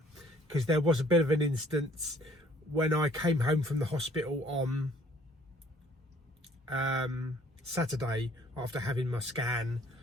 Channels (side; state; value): both; normal; correlation 0.58